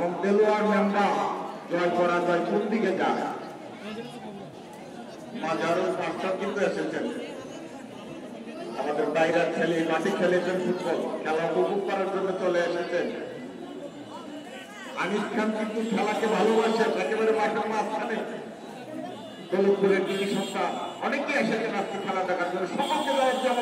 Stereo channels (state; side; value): identical; both; correlation 1.00